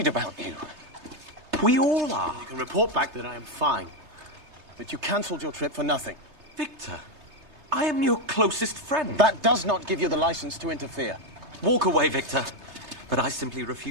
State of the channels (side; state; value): left; late; 3.3 ms